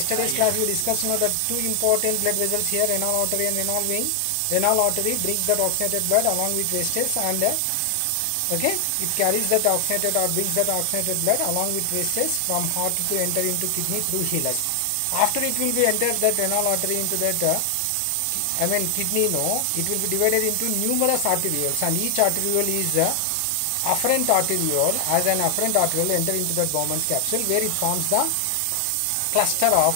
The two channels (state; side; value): different; both; correlation 0.00